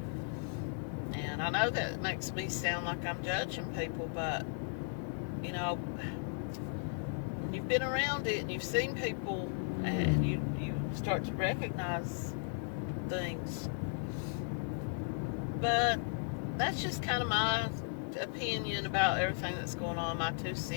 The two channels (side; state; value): right; silent; 54 dB below the other